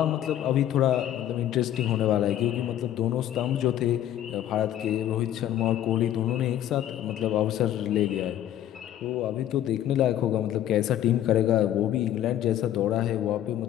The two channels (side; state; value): right; quieter; 11.8 dB